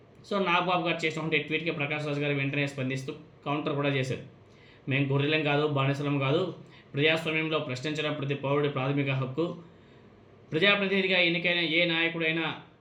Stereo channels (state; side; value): identical; both; correlation 1.00